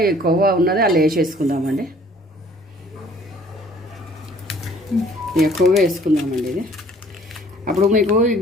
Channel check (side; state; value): both; normal; correlation 0.55